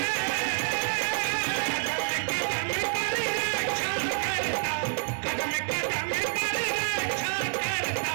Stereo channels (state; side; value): silent; left; 59 dB below the other